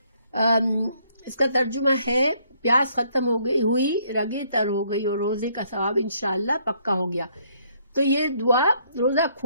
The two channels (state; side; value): inverted; both; correlation -0.68